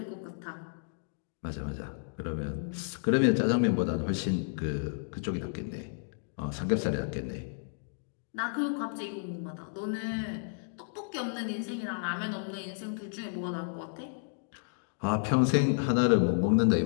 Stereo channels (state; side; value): silent; right; digital silence